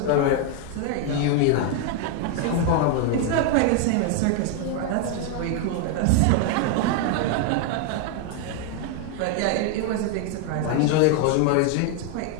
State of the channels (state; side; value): different; both; correlation 0.01